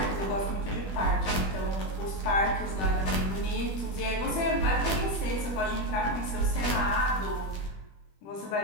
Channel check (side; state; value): right; late; 21 ms